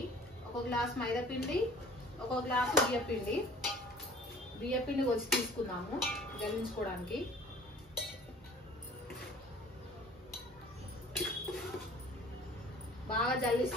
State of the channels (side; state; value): both; normal; correlation 0.48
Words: ఒక గ్లాస్ మైదా పిండి, ఒక గ్లాసు బియ్యపిండి. బియ్యపిండి వచ్చి తీసుకుందాము జల్లించుకోవడానికి.